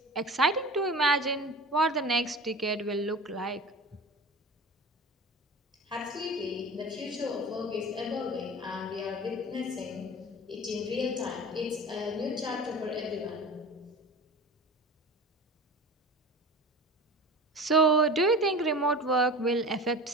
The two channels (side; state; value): both; normal; correlation 0.35